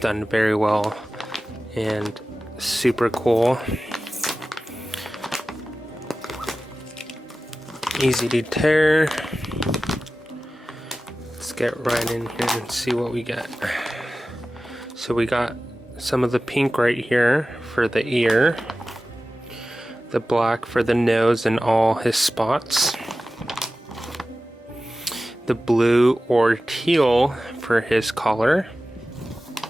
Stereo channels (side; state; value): both; normal; correlation 0.95